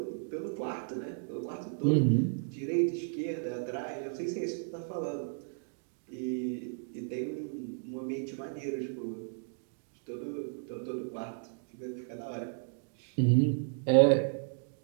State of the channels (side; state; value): left; silent; digital silence